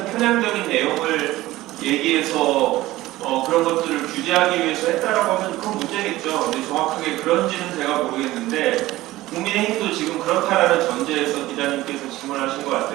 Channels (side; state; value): left; quieter; 17.1 dB